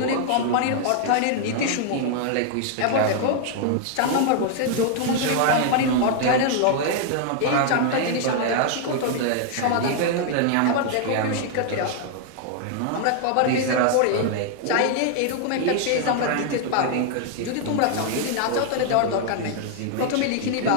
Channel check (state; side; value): different; both; correlation 0.00